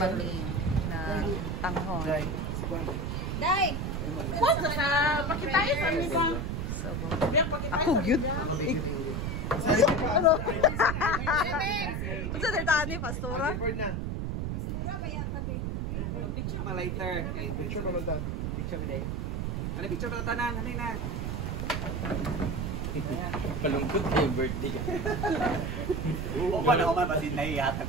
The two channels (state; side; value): noise; right; rumble, 1 dB below the sound